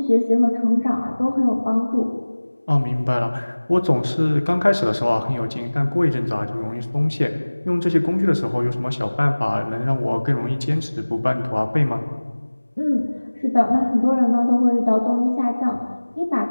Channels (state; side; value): inverted; both; correlation -1.00